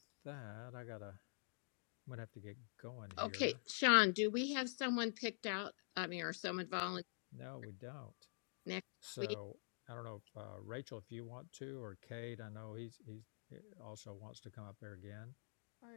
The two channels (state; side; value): silent; right; digital silence